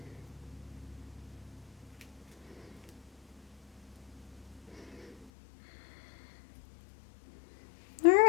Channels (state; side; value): drops out; right; at 5.3 s